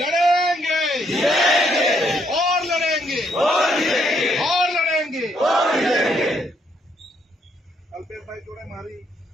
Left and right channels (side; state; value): both; normal; correlation 0.72